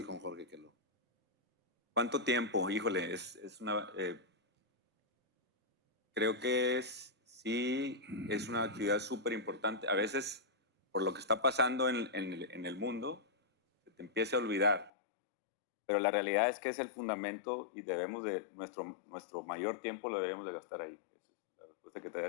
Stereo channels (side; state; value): right; drops out; at 14.9 s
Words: con Jorge Quello. ¿Cuánto tiempo? Híjole, creo que sí es una actividad súper importante. A veces por lo que está pasando en el mundo, se te empiece a olvidar. Pero la realidad es que es el fundamento y debemos de, nuestro mayor tiempo lo deberíamos de gastar ahí. Esa es la respuesta que te